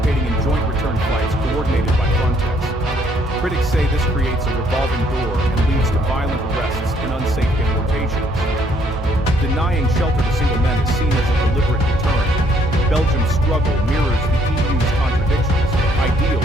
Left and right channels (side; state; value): both; normal; correlation 0.66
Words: in joint return flights coordinated by Frontex. Critics say this creates a revolving door and leads to violent arrests and unsafe deportations. Denying shelter to single men is seen as a deliberate deterrent. Belgium's struggle mirrors the EU's contradictions, ideals